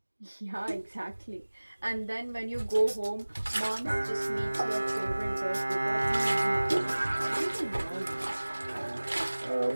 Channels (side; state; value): both; inverted; correlation -1.00